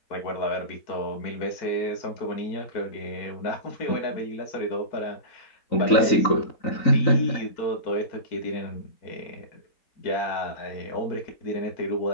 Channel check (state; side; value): late; right; 3.9 ms